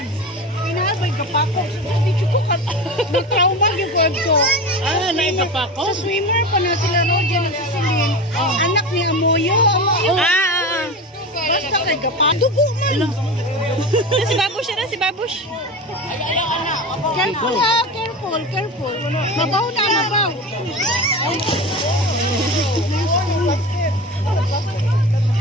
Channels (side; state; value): both; normal; correlation 0.28